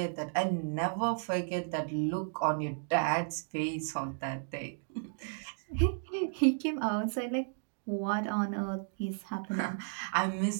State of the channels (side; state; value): left; silent; digital silence